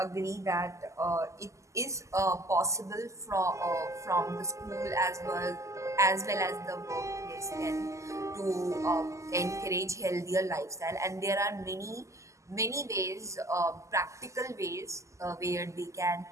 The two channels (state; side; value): late; left; 0.15 ms